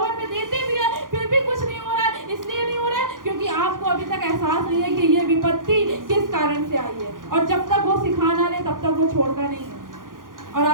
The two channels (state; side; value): late; left; 0.90 ms